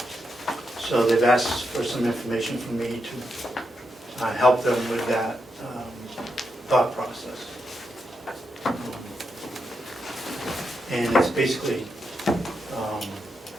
So they've asked for some information from me to help them with that thought process. And it's basically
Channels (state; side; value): normal; both; correlation 0.84